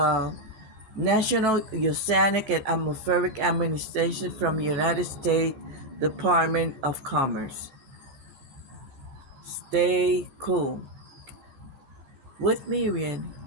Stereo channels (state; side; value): late; left; 15 ms